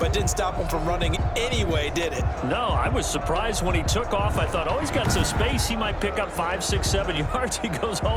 didn't stop him from running anyway, did it? No, I was surprised when he took off. I thought, oh, he's got some space. He might pick up 5, 6, 7 yards. He goes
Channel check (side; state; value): both; identical; correlation 1.00